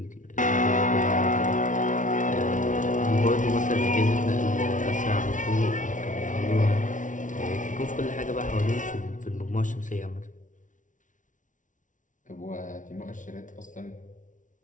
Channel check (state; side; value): late; right; 0.37 ms